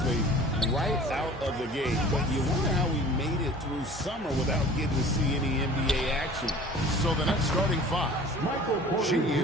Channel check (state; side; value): normal; both; correlation 0.45